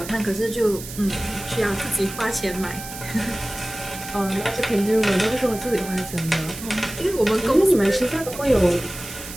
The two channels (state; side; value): noise; right; hiss, 12 dB below the sound